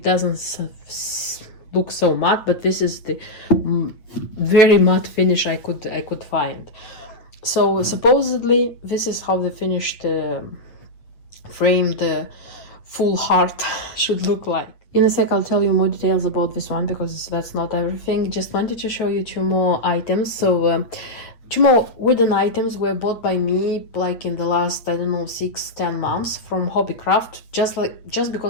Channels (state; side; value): late; right; 8.9 ms